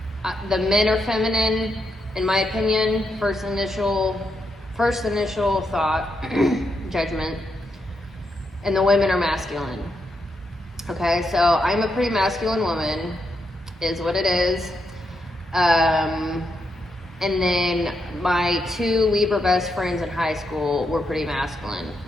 The men are feminine, in my opinion. First initial thought, judgment, and the women are masculine. Okay, so I'm a pretty masculine woman, is what it is. And then my two Libra best friends in high school were pretty masculine.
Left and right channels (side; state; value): both; normal; correlation 0.82